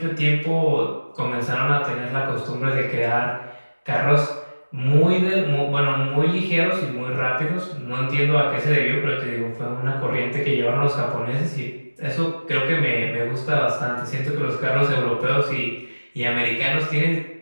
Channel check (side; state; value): both; inverted; correlation -1.00